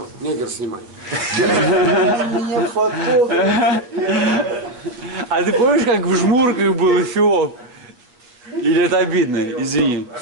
Негр снимай. Меня фотограф. А ты помнишь, как в Жмурках был Эфиоп? Или это обидно? Извини.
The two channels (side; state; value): left; late; 8.2 ms